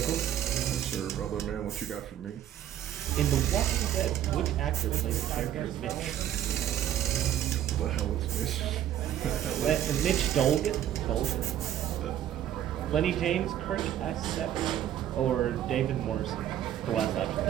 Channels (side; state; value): left; quieter; 11.3 dB